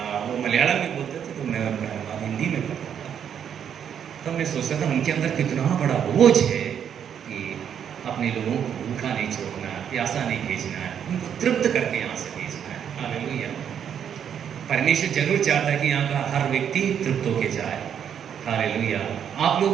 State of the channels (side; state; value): left; quieter; 8.5 dB